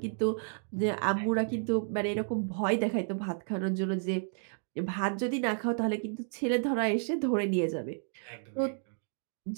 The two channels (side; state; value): left; silent; digital silence